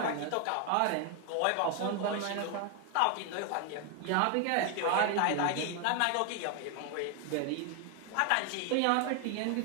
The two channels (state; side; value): different; both; correlation 0.01